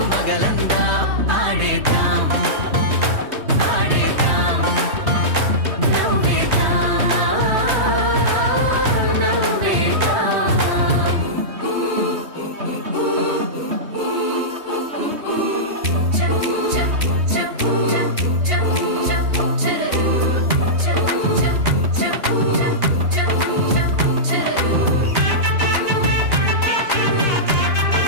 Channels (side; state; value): left; late; 3.2 ms